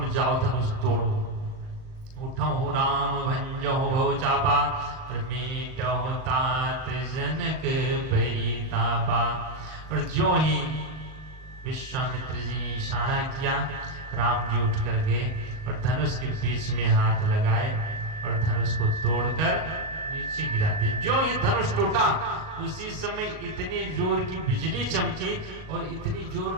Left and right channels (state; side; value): late; left; 38 ms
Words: जाओ धनुष तोड़ो। वो उठो राम भंजो भव चापा और मीटो तात जनक परितापा। और जो ही विश्वामित्र जी ने इशारा किया, राम जी उठ कर गए और धनुष के बीच में हाथ लगाए और धनुष को तोड़कर नीचे गिरा दिया। जो ही धनुष टूटा उसी समय इतनी जोर की बिजली चमकी और इतनी